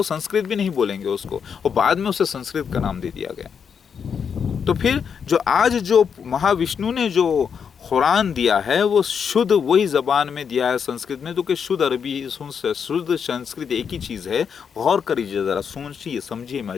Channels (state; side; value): quieter; right; 6.9 dB